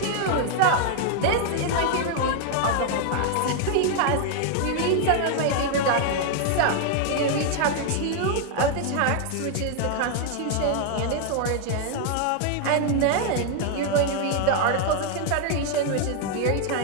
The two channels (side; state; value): both; different; correlation 0.00